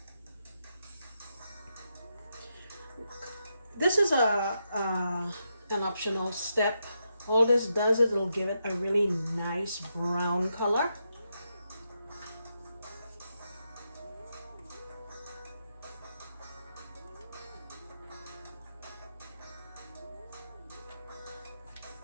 This is an optional step. All this does is it'll give it a really nice brown color.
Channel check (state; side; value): inverted; both; correlation -0.84